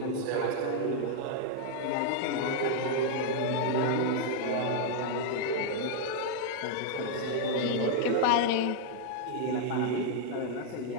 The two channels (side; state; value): both; different; correlation -0.01